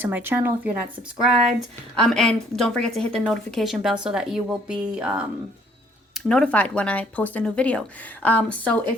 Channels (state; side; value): normal; both; correlation 0.62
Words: my channel if you're not subscribed. And don't forget to hit the notification bell so that you will be notified when I post a new video. So